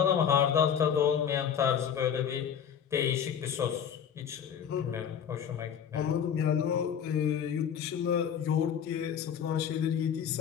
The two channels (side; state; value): right; quieter; 8.2 dB